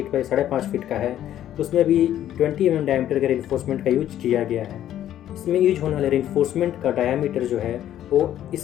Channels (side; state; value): right; quieter; 11.7 dB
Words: बाई 5.5 फीट का है, उसमें भी 20 mm डायमीटर के रीइंफोर्समेंट का यूज किया गया है। इसमें यूज होने वाले रीइंफोर्समेंट का डायमीटर जो है वो